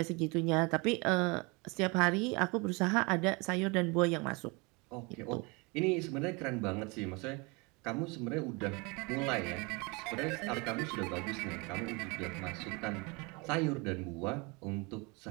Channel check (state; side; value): quieter; left; 28.4 dB